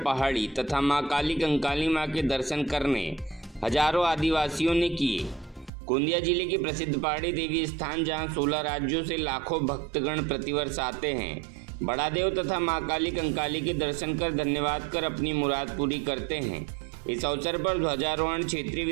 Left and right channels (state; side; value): drops out; left; at 5.7 s